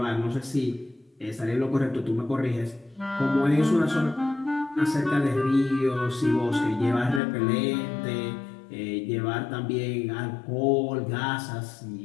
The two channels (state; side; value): drops out; right; at 7.2 s